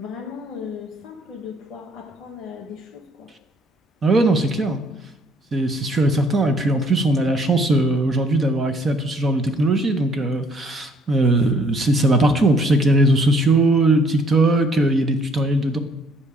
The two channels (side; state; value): both; normal; correlation 0.63